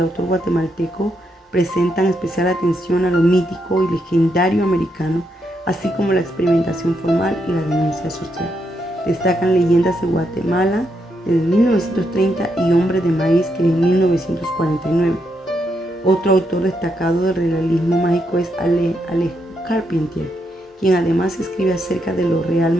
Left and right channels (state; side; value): normal; both; correlation 0.80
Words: autor guatemalteco presentan especial atención a lo mítico y legendario americano, así como la experimentación formal y la denuncia social. Destacan Leyendas de Guatemala de 1930 y Hombre de Maíz, que en 1949. Otro autor destacado del realismo mágico es Alejo Carpentier, quien además escribe acerca de lo real